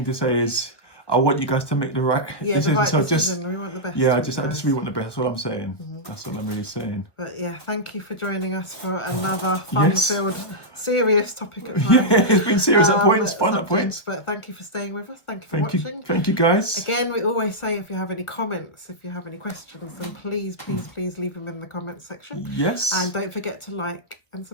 to say is, I want you guys to make the right decision. The right decision. We want the best. Yeah, I just really want the best. That's all I'm saying. That's all I'm really saying. But yeah, thank you for joining us for another fun-filled, serious topic at times. Yeah, it's been serious at points, fun at points. But thank you for staying with us. Thank you for watching. Thank you, guys. Again, we always say if you have any comments, if you have any questions, then please leave them in the comments section. Yes. And don't forget to like and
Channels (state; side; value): late; right; 1.5 ms